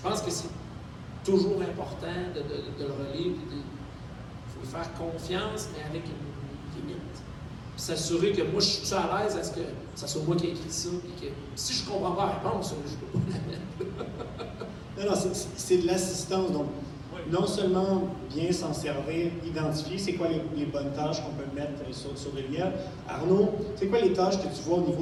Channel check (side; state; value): both; identical; correlation 1.00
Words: que c'est toujours important de le relire. Il faut lui faire confiance, mais avec une limite. Puis s'assurer que moi, je suis à l'aise à ce que ça soit moi qui ai écrit ça. Et que si je ne comprends pas la réponse, je ne peux pas la mettre. Non, c'est de l'assistance. Donc, non seulement bien s'en servir, identifier c'est quoi les bonnes tâches qu'on peut mettre sur de l'IA. Arnaud, c'est quoi les tâches que tu vois au